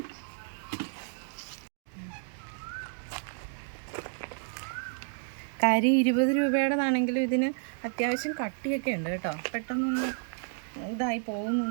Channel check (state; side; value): silent; left; digital silence